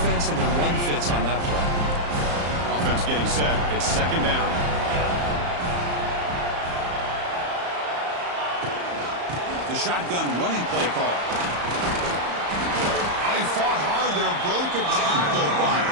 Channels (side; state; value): left; late; 34 ms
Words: and their run fits on that play. Offense getting set. It's 2nd down. The shotgun running play call. He fought hard there, broke a tackle, but